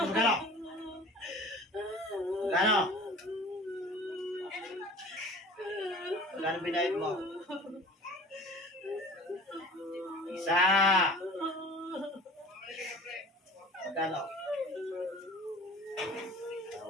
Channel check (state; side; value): normal; both; correlation 0.42